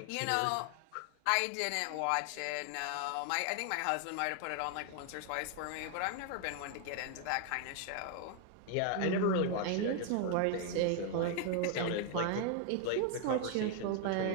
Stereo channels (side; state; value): both; different; correlation 0.00